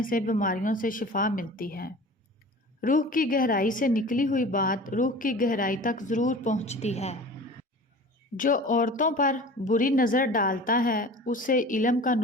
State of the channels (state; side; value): normal; both; correlation 0.40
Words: سے بیماریوں سے شفا ملتی ہے۔ روح کی گہرائی سے نکلی ہوئی بات روح کی گہرائی تک ضرور پہنچتی ہے۔ جو عورتوں پر بری نظر ڈالتا ہے اسے علم کا